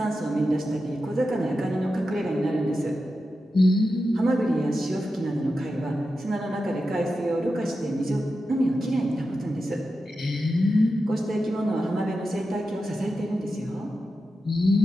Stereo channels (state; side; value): normal; both; correlation 0.90